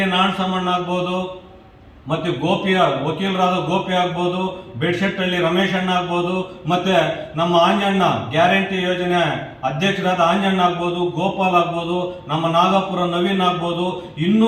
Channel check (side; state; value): both; identical; correlation 1.00